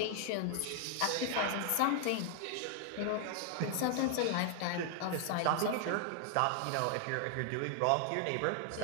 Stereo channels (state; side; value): different; both; correlation 0.00